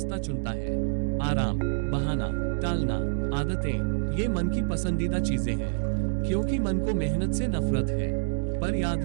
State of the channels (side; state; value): left; silent; digital silence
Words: चुनता है। आराम, बहाना, टालना, आदतें ये मन की पसंदीदा चीजें हैं क्योंकि मन को मेहनत से नफरत है। पर याद